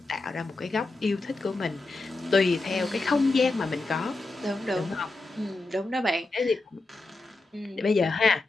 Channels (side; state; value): right; quieter; 3.2 dB